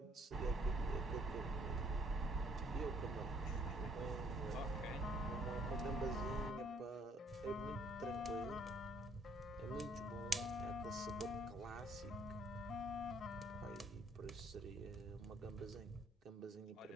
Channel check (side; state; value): both; normal; correlation 0.65